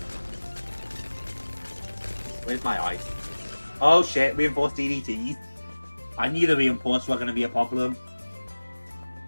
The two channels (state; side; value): inverted; both; correlation -1.00